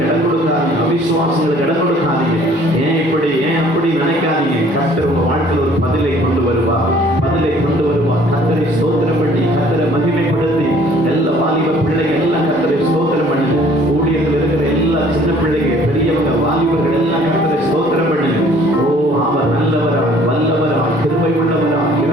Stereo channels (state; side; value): normal; both; correlation 0.56